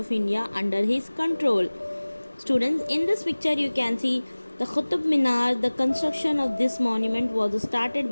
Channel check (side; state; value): both; inverted; correlation -1.00